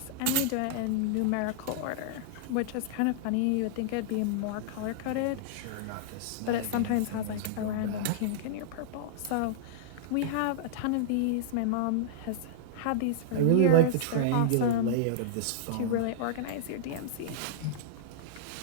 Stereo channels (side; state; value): both; different; correlation -0.02